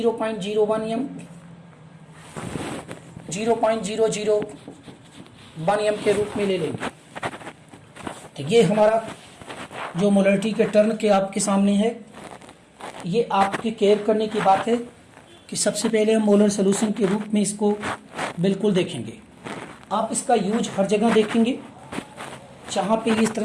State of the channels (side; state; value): both; identical; correlation 1.00